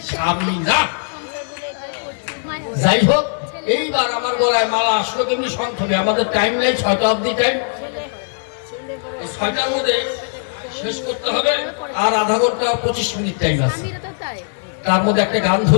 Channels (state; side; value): silent; right; digital silence